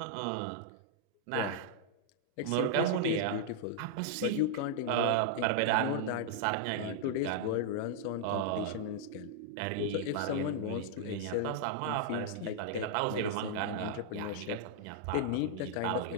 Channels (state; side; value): different; both; correlation -0.01